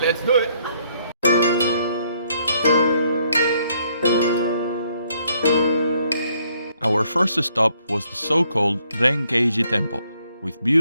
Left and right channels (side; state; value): both; inverted; correlation -0.68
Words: let's do it. Our first stop was the so-called Renkeiji temple, with